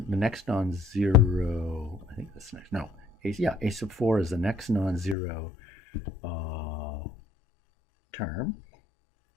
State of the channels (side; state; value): right; drops out; at 5.2 s